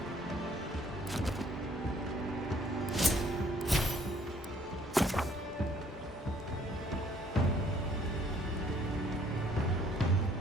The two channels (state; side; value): normal; both; correlation 0.60